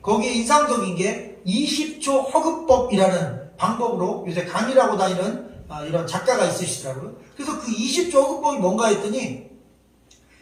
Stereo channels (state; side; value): identical; both; correlation 1.00